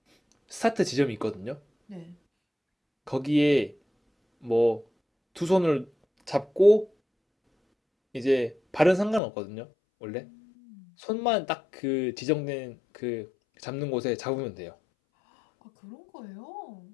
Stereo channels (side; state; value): right; drops out; at 9.2 s